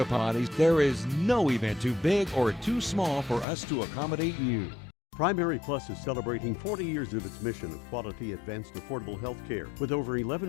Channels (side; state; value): right; drops out; at 3.5 s